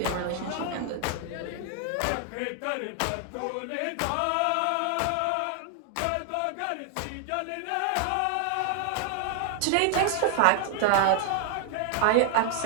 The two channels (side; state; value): both; different; correlation 0.00